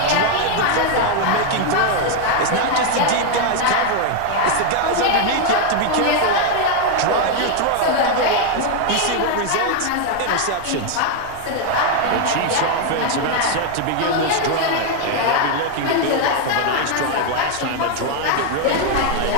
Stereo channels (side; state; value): both; different; correlation 0.01